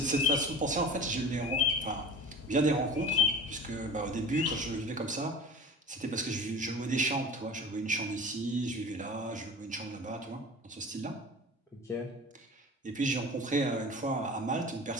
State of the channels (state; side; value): normal; both; correlation 0.38